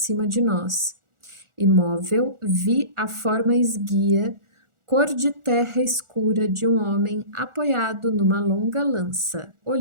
de nós. Imóvel, vi a forma esguia, cor de terra escura de um homem apoiado numa longa lança,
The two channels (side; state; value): left; late; 1.4 ms